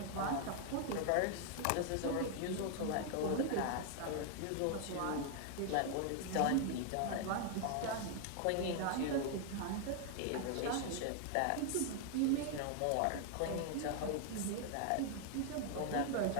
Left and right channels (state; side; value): different; both; correlation 0.00